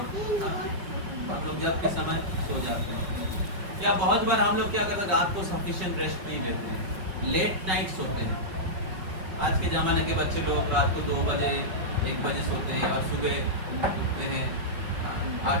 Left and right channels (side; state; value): left; late; 5.3 ms